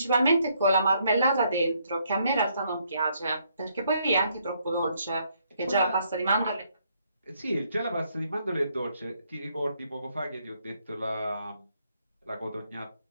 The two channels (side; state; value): both; inverted; correlation -0.71